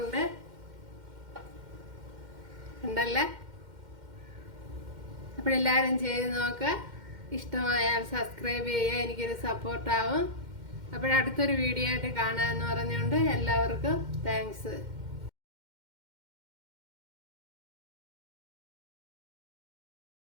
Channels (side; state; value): left; late; 2.1 ms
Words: ഉണ്ടല്ലേ. അപ്പോഴെല്ലാവരും ചെയ്ത് നോക്കുക. ഇഷ്ടമായാൽ സബ്സ്ക്രൈബ് ചെയ്യുക, എനിക്കൊരു സപ്പോർട്ടാവും. അപ്പോഴടുത്തൊരു വീഡിയോ ആയിട്ട് കാണാമെന്ന് പറഞ്ഞുകൊണ്ട് എല്ലാവർക്കും താങ്ക്സ്.